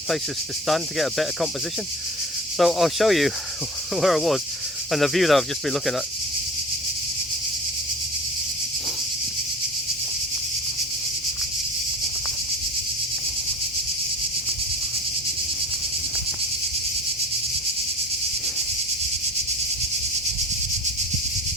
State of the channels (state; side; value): normal; both; correlation 0.37